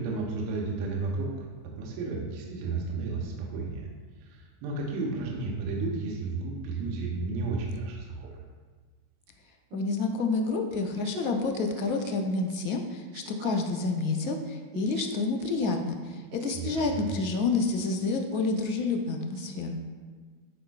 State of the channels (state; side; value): late; left; 22 ms